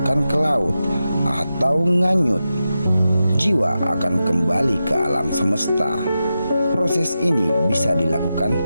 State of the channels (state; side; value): inverted; both; correlation -0.90